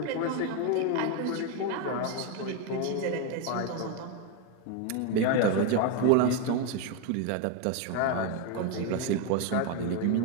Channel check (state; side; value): different; both; correlation 0.01